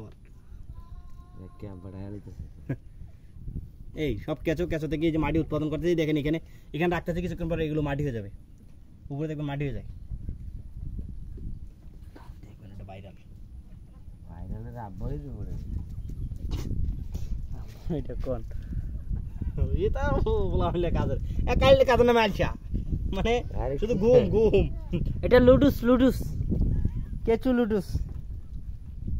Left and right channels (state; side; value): identical; both; correlation 1.00